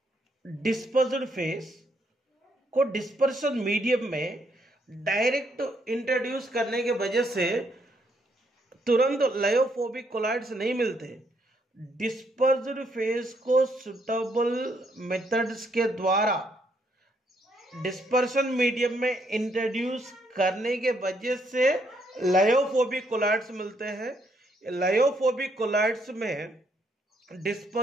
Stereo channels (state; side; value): normal; both; correlation 0.73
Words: डिस्पर्स्ड फेस को डिस्पर्शन मीडियम में डायरेक्ट इंट्रोड्यूस करने के वजह से तुरंत लायोफोबिक कोलॉइड्स नहीं मिलते। डिस्पर्स्ड फेस को सुटेबल मेथड्स के द्वारा डिस्पर्शन मीडियम में इंट्रोड्यूस करने के वजह से लायोफोबिक कोलॉइड्स मिलते हैं। लायोफोबिक कोलॉइड्स में